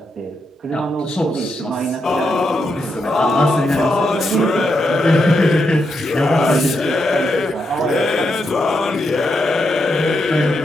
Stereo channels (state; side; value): normal; both; correlation 0.83